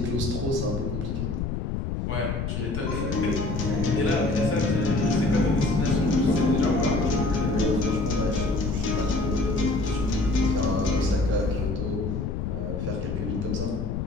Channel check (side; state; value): left; noise; rumble, 2 dB below the sound